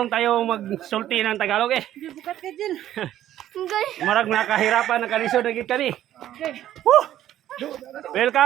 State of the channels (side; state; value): left; quieter; 12.3 dB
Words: tayo magsulti ng Tagalog eh. Bukat ka dyan. Marag nakahirapan na kalisod na gid kani. Woo!